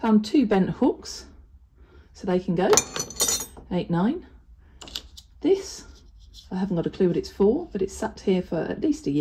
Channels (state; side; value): identical; both; correlation 1.00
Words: 2 bent hooks, so they can go. 8, 9. This, I haven't got a clue what it's for, but it's sat here for at least a